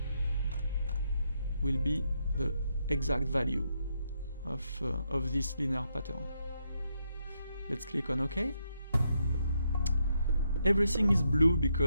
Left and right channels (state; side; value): inverted; both; correlation -0.79